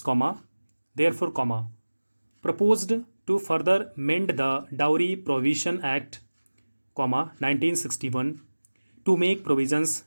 comma therefore comma proposed to further mend the dowry provision act comma 1961 to make provisions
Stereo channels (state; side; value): inverted; both; correlation -1.00